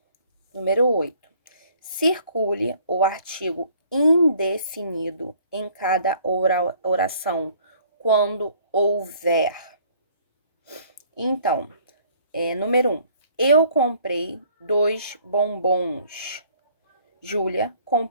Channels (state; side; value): inverted; both; correlation -0.58